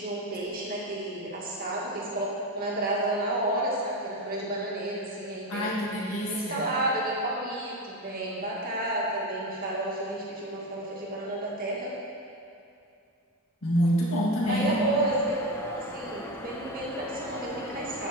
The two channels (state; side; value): normal; both; correlation 0.17